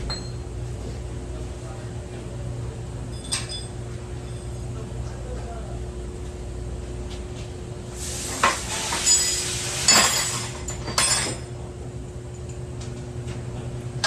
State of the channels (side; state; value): both; identical; correlation 1.00